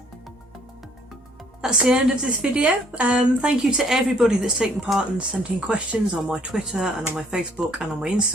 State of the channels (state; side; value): normal; both; correlation 0.62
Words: That's the end of this video. Thank you to everybody that's taken part and sent in questions on my Twitter and on my Facebook and on my